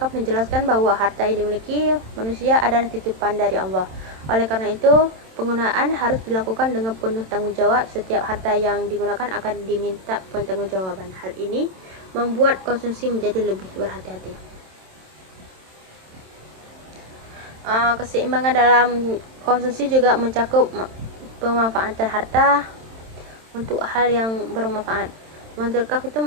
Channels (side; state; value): left; late; 27 ms